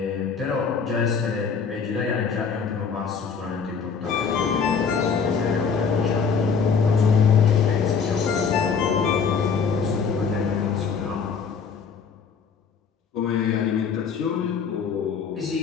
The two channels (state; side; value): quieter; right; 6.0 dB